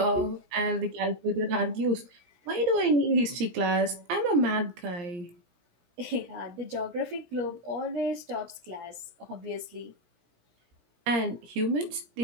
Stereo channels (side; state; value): left; late; 17 ms